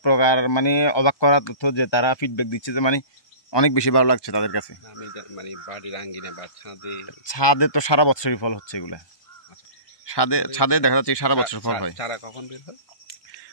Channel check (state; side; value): late; right; 1.2 ms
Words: প্রকার মানে অবাক করা তথ্য যে তারা ফিডব্যাক দিচ্ছে যে মানে অনেক বেশি ভালো লাগছে তাদের কাছে। আমি মানে বাড়ির আঙ্গিনা বা ছাদে তো সারা বছরই ফল হচ্ছে এগুলা। ছাদে দেখা যাচ্ছে সারা বছর ফল হয়। চারা কখন বের হয়?